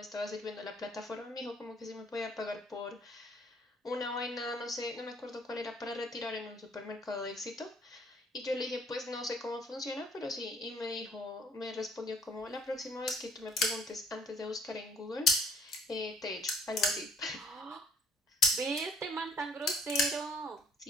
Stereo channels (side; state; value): both; normal; correlation 0.60